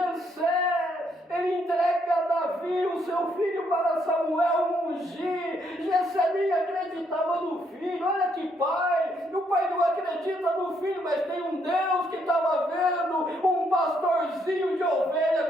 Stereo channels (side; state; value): both; normal; correlation 0.73